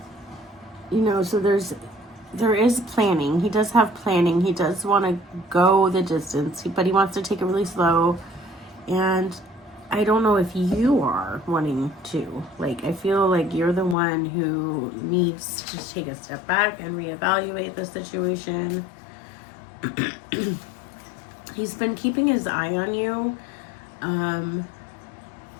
You know, so there is planning. He does have planning. He does want to go the distance, but he wants to take it really slow. And I don't know if you are wanting to. Like, I feel like you're the one who needs to take a step back and reevaluate the situation. He's been keeping his eye on you.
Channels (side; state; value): right; drops out; at 14.0 s